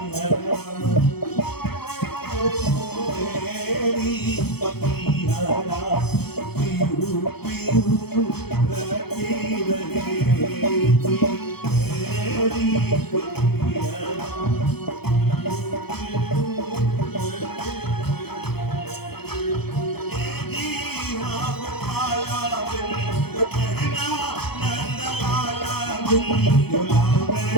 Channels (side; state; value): right; late; 0.96 ms